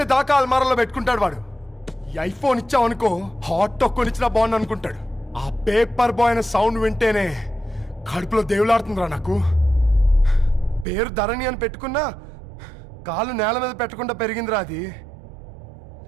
దాకా అల్మారాలో పెట్టుకుంటాడు వాడు. ఈ ఐఫోన్ ఇచ్చావనుకో హాట్ టాక్ కొనిచ్చినా బాగుంది అనుకుంటాడు. ఆ పేపర్ బాయ్ అనే సౌండ్ వింటేనే కడుపులో దేవులాడుతుందిరా నాకు. పేరు ధరణి అని పెట్టుకున్నా కాలు నేల మీద పెట్టకుండా పెరిగిందిరా అది.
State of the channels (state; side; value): drops out; left; at 10.9 s